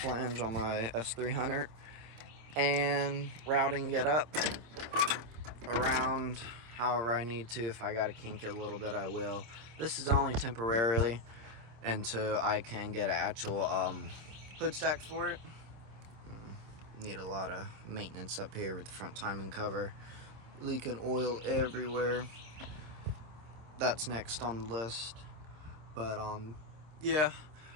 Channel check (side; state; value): left; late; 26 ms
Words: on my S300 and routing it up around however I need to. If I gotta kink it a little bit, I will. This is only temporarily until I can get an actual hood stack for it. Need a lot of maintenance up here with the front timing cover, leaking oil everywhere. That's next on the list. But yeah,